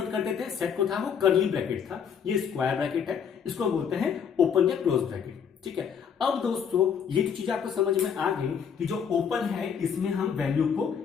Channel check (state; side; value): quieter; right; 7.3 dB